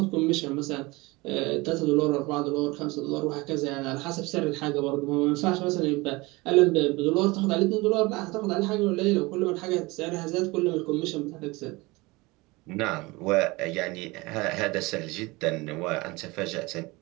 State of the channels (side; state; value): left; quieter; 23.2 dB